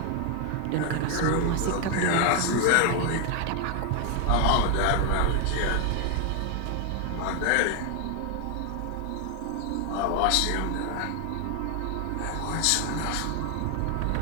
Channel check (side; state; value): both; different; correlation 0.00